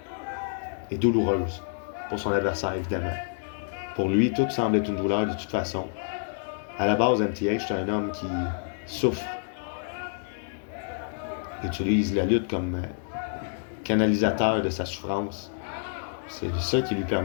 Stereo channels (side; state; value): right; silent; digital silence